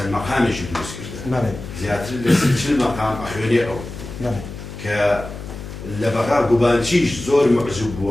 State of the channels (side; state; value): left; noise; hum, 11 dB below the sound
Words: مەقامێکی دروست کردە زیاتر لە 40 مەقام ئەخوێنێ ئەو کە لە بەغا گوبانچیش زۆر معجوب بووە